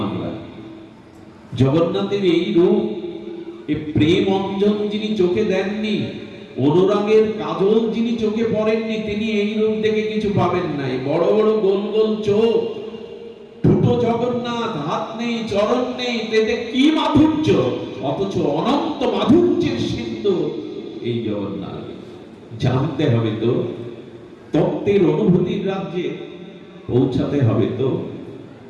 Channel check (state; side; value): identical; both; correlation 1.00